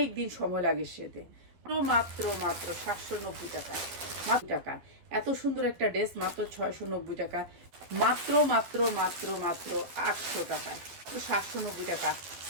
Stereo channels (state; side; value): late; left; 12 ms